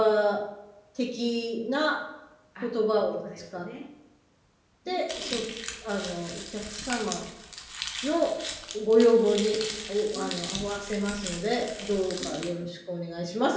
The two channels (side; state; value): both; identical; correlation 1.00